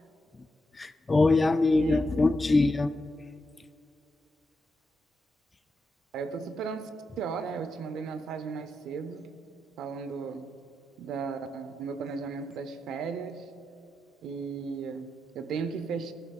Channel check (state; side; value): normal; both; correlation 0.86